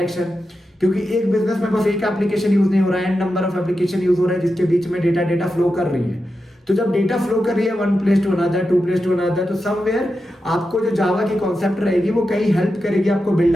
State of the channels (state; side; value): normal; both; correlation 0.89